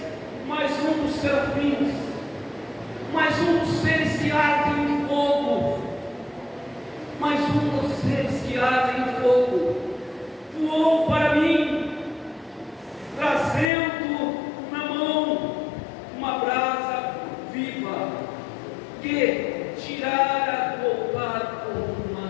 mais um dos serafins, mais um dos seres que ardem em fogo, mais um dos seres que ardem em fogo, voou para mim, trazendo na mão uma brasa viva, que tirara do altar com uma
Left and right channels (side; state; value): right; drops out; at 13.7 s